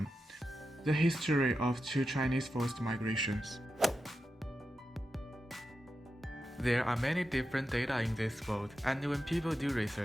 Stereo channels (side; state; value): both; normal; correlation 0.90